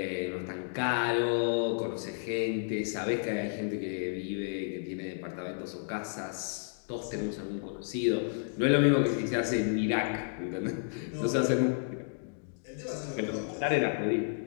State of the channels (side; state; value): right; silent; digital silence